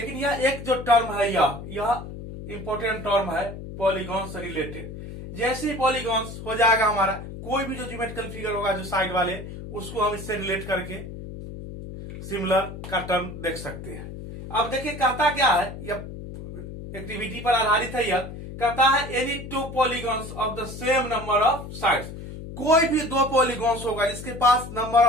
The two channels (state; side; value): noise; left; hum, 11 dB below the sound